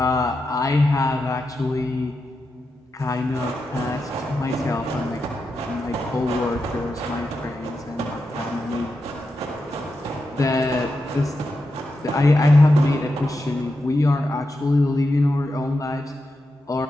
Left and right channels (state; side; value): normal; both; correlation 0.88